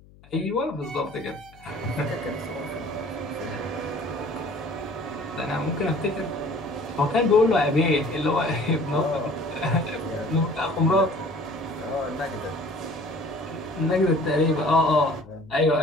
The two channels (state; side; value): noise; left; hum, 25 dB below the sound